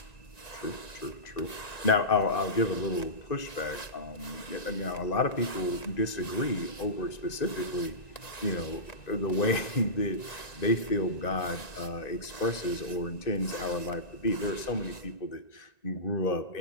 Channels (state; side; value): late; right; 1.9 ms